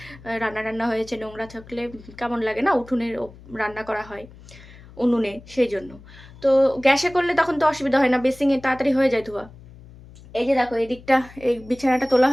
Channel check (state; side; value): noise; left; hum, 21 dB below the sound